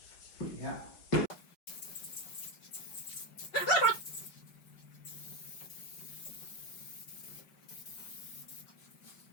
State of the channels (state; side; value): late; right; 5.3 ms